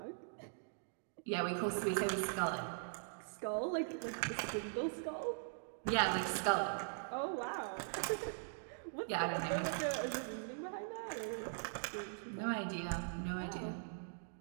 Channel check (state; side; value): silent; left; digital silence